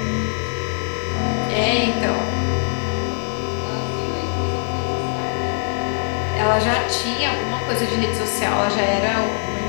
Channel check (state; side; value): silent; right; 64 dB below the other